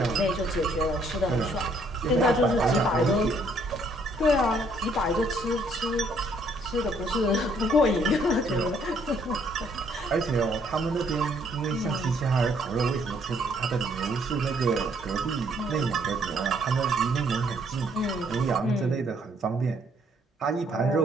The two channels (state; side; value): normal; both; correlation 0.66